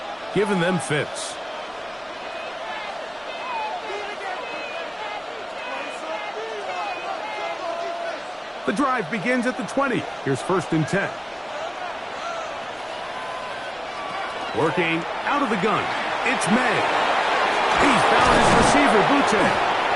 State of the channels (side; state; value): both; identical; correlation 1.00